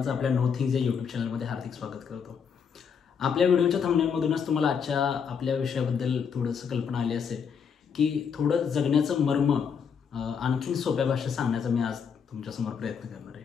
आपल्या नो थिंग्स या यूट्यूब चॅनलमध्ये हार्दिक स्वागत करतो। आपल्या व्हिडिओच्या थंबनेलमधूनच तुम्हाला आजच्या आपल्या विषयाबद्दल थोडंसं कल्पना आली असेल की थोडं जगण्याचं मर्म आणखीन सोप्या भाषेत सांगण्याचा मी आज तुमच्यासमोर प्रयत्न करणार आहे।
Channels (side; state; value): right; quieter; 6.7 dB